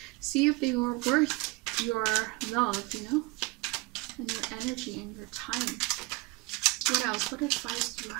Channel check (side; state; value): left; quieter; 23.8 dB